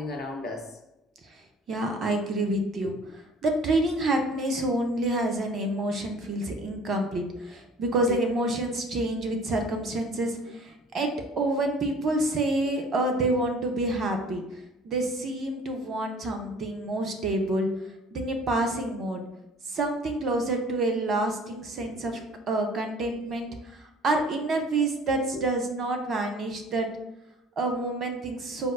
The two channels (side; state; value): both; normal; correlation 0.49